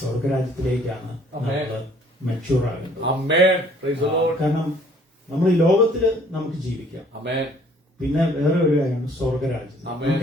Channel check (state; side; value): normal; both; correlation 0.58